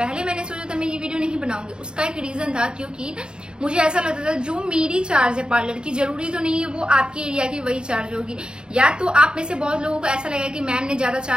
मैंने सोचा था मैं ये वीडियो नहीं बनाऊंगी, उसका एक रीजन था क्योंकि मुझे ऐसा लगता था जो मेरी चार्ज है पार्लर की, जरूरी तो नहीं है वो आपके एरिया की वही चार्ज होगी। या तो आप में से बहुत लोगों को ऐसा लगेगा कि मैम ने ज्यादा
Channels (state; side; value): late; left; 0.049 ms